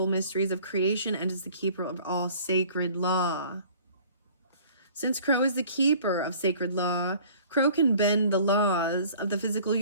mysteries of creation and is the keeper of all sacred law. Since Crow is the keeper of sacred law, Crow can bend the laws of the physical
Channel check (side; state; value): both; inverted; correlation -0.51